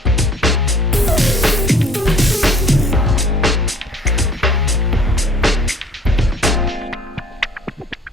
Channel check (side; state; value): both; normal; correlation 0.54